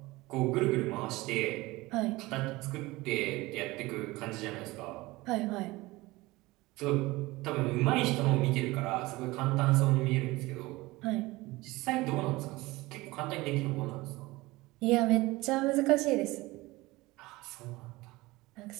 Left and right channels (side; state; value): left; quieter; 20.7 dB